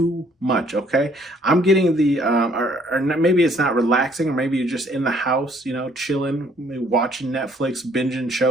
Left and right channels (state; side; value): normal; both; correlation 0.63